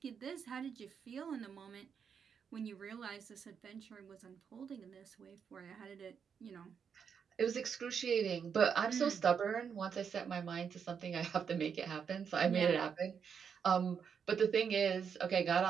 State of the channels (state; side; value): quieter; left; 6.9 dB